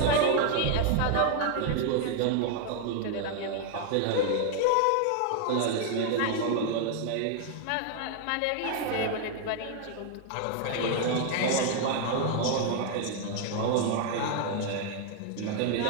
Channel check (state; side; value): different; both; correlation 0.00